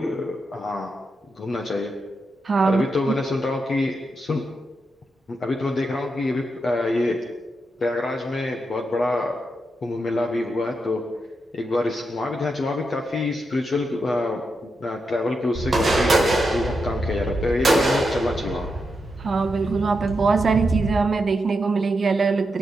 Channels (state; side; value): normal; both; correlation 0.85